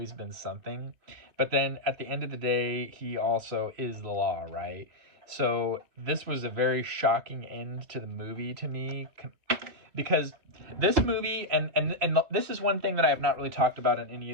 been something. But then at the end of the day, he also is the law, right? So this was a very shocking end to the movie to me, because this movie, and this is one thing that I have not really talked about in any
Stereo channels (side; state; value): left; late; 3.3 ms